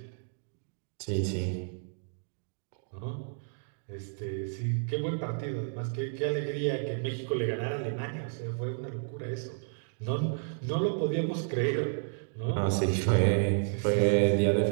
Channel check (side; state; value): left; silent; digital silence